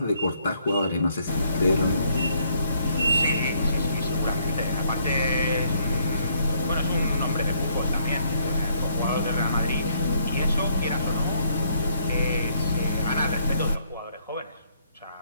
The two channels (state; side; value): inverted; both; correlation -0.69